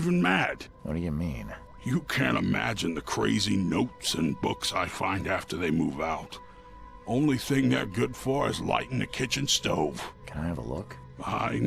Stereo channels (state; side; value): identical; both; correlation 1.00